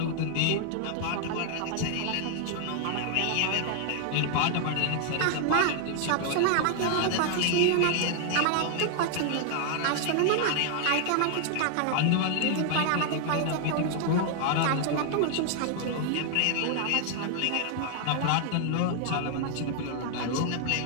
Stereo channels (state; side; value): different; both; correlation 0.00